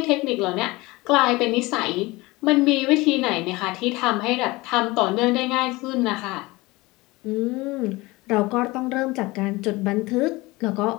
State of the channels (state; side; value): quieter; right; 21.8 dB